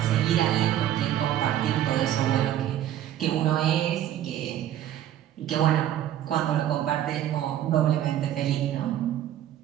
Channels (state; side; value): quieter; left; 11.7 dB